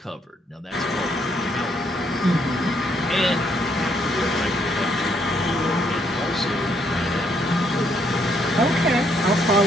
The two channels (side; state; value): both; normal; correlation 0.72